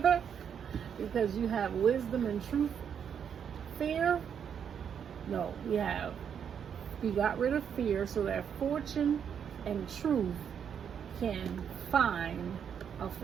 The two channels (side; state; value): left; quieter; 7.9 dB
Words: Because you have wisdom and truth. Fear, no, we got rid of fear so that fortune and truth can find a